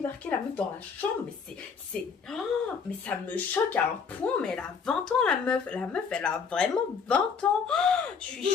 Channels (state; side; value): quieter; right; 5.9 dB